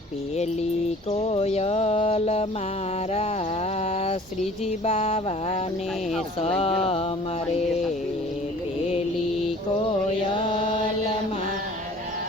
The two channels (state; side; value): normal; both; correlation 0.49